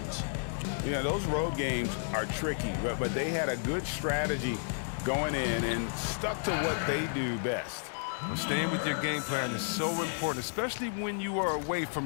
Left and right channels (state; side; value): silent; right; digital silence